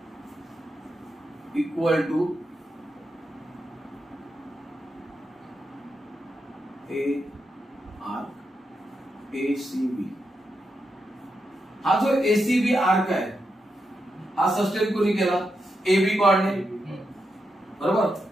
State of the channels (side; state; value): both; normal; correlation 0.85